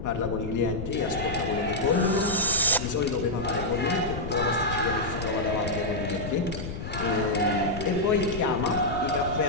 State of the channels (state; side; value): noise; left; rumble, 7 dB below the sound